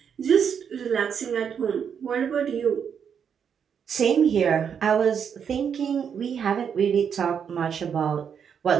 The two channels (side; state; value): left; quieter; 7.5 dB